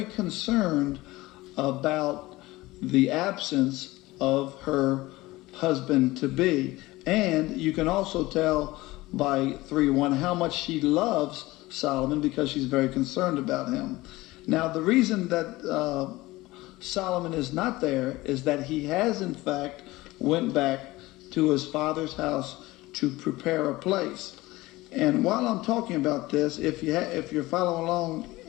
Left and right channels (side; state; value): right; quieter; 19.5 dB